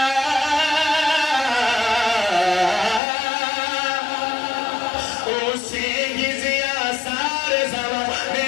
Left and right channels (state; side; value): drops out; right; at 3.0 s